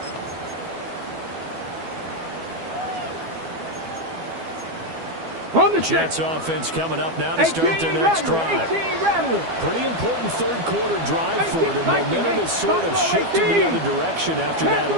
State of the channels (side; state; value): left; late; 12 ms